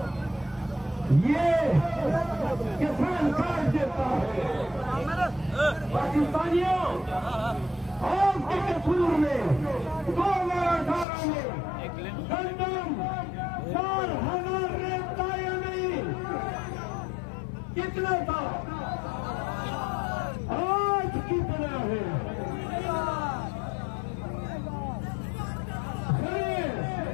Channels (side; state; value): right; drops out; at 11.1 s